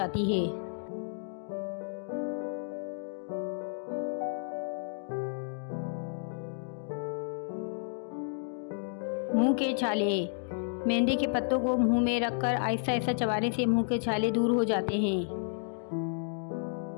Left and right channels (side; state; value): right; silent; digital silence